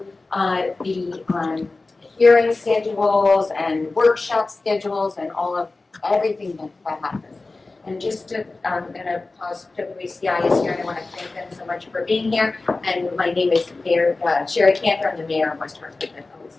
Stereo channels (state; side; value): quieter; right; 3.4 dB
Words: the hearing schedules and workshop schedules and all of everything that happens. And just to, I'm going to pause. WACI is here, and I want to thank them so much for being here. And my name is Mayor Sherry Cantor. I'm the mayor of West Hartford. That always